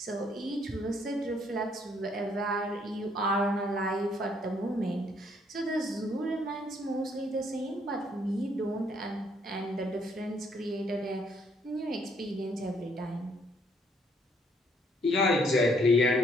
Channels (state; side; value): normal; both; correlation 0.67